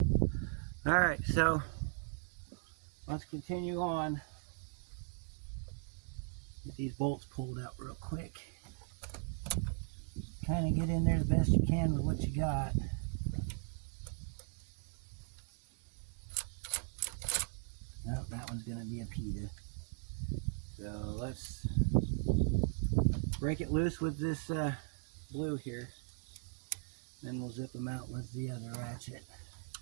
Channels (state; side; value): silent; left; 52 dB below the other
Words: Alright, so let's continue on. Get these bolts pulled out real quick. Kind of get in there the best you can with what you got. Oh, that one's going to be a PETA. So let's break it loose with this blue here. Then we'll zip them out with the other ratchet.